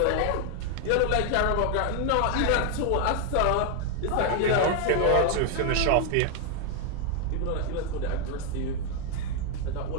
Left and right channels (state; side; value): different; both; correlation 0.00